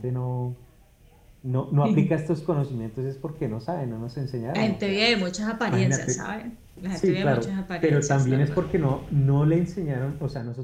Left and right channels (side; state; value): both; identical; correlation 1.00